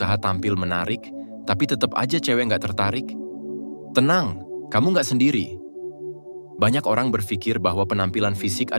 tampil menarik, tapi tetap aja cewek nggak tertarik? Tenang, kamu nggak sendiri. Banyak orang berpikir bahwa penampilan fisik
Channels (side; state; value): both; inverted; correlation -1.00